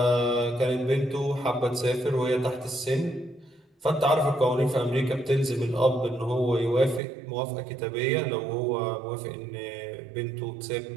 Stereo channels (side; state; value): left; drops out; at 7.0 s